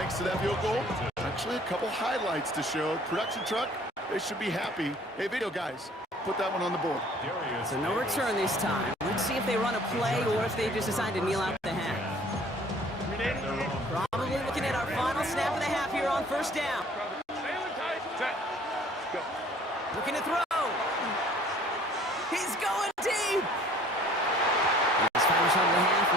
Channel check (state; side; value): normal; both; correlation 0.54